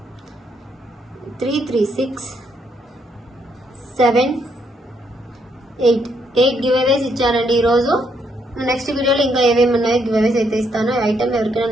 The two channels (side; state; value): both; normal; correlation 0.74